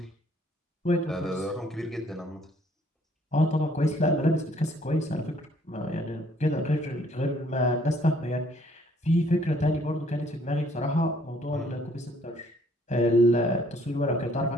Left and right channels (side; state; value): both; normal; correlation 0.63